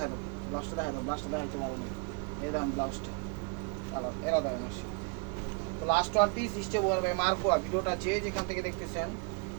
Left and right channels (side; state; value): left; quieter; 33.1 dB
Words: দাও, ব্লাউজটা দেখা দাও, ব্লাউজটা দেখাতে পারো না। এই দেখেন ব্লাউজটা আবার এরা দেখেন আসে। তো last one piece step over by মার্কোয়া। ভিডিওটা যে যেখান থেকে দেখতেছেন